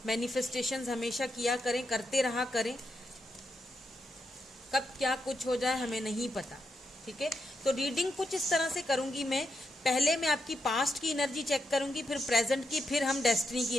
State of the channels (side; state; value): both; normal; correlation 0.84